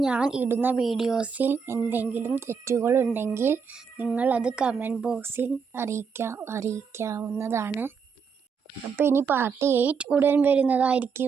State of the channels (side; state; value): left; quieter; 5.9 dB